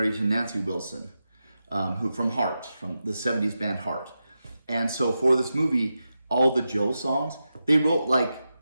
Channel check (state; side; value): inverted; both; correlation -0.90